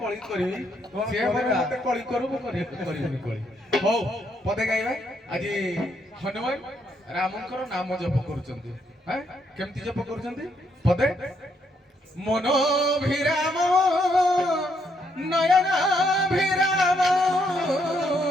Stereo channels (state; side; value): normal; both; correlation 0.74